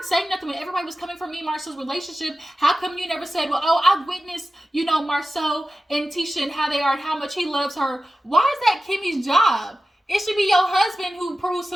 saying nothing when everybody was coming for me and Marsaue's relationship. How come you never said, well, I witnessed, Marsaue and Tisha and how they are and how much he loves her? Why is that Kimmi's job? It should be your husband who proves to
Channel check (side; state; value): both; normal; correlation 0.94